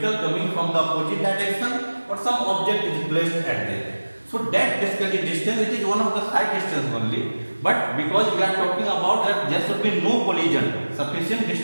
coming from the opposite direction, or some object is placed at there. So that basically distance, it is one of the side distance only, but because we are talking about that there should be no collision, sufficient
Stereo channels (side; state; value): both; inverted; correlation -1.00